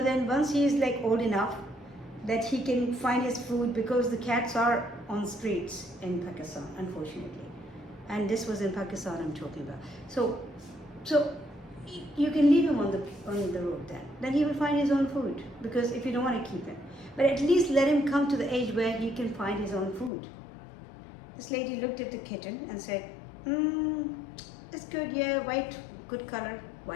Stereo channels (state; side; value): drops out; right; at 20.1 s